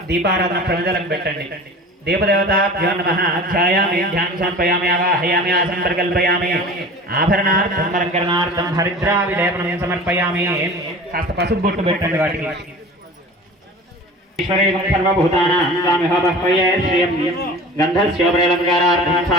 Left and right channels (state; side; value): normal; both; correlation 0.39